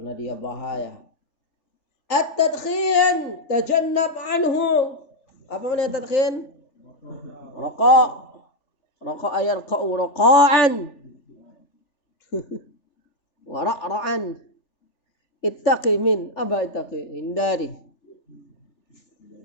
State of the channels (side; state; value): right; late; 3.4 ms